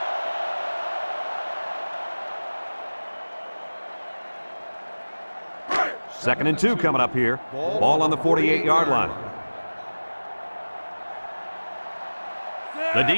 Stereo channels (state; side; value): inverted; both; correlation -1.00